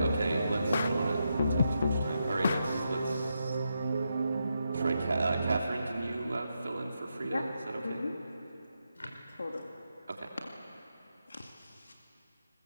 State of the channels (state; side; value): inverted; both; correlation -0.84